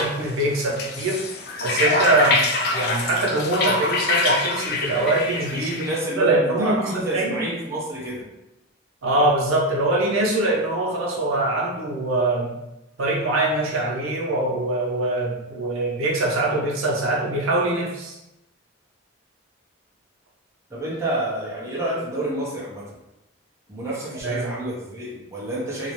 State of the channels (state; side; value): normal; both; correlation 0.05